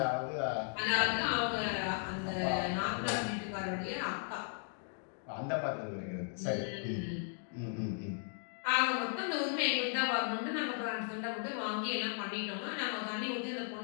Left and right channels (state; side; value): silent; right; 54 dB below the other